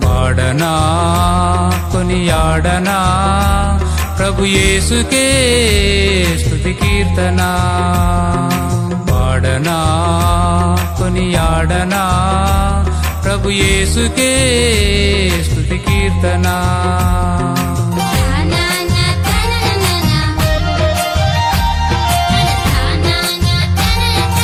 పాడనా కొనియాడనా ప్రభు యేసుకే స్తుతి కీర్తన పాడనా కొనియాడనా ప్రభు యేసుకే స్తుతి కీర్తన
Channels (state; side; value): identical; both; correlation 1.00